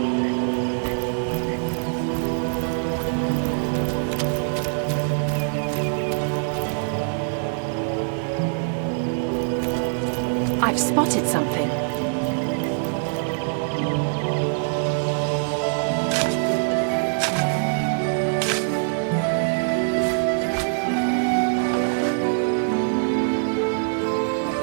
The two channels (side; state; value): left; silent; digital silence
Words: I've spotted something.